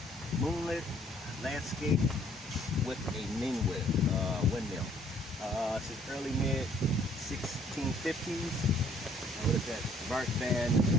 moonlit landscape with a windmill. It's the early mid 1650s. What is that? Bart van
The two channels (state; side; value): normal; both; correlation 0.62